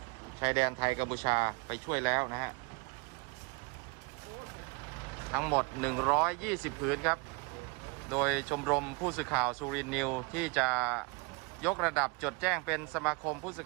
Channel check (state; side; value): quieter; left; 29.2 dB